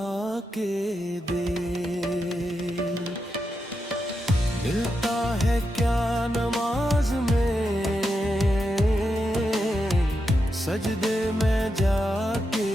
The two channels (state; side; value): normal; both; correlation 0.86